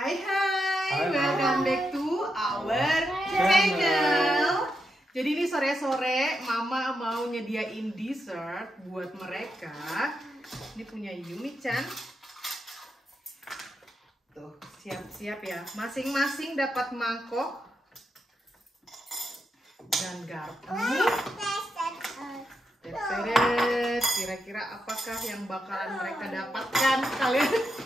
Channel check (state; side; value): normal; both; correlation 0.84